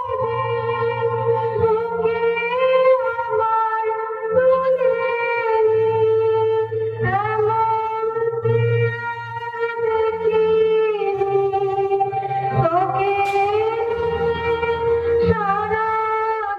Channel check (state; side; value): identical; both; correlation 1.00